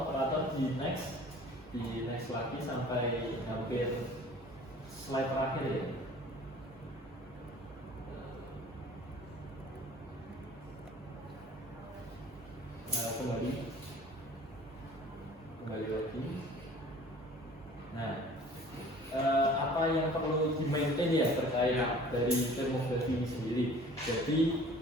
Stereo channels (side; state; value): both; normal; correlation 0.47